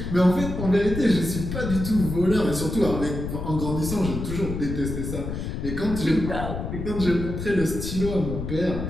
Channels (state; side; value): noise; left; rumble, 5 dB below the sound